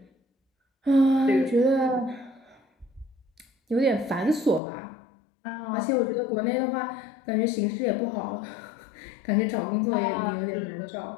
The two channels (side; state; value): right; drops out; at 4.6 s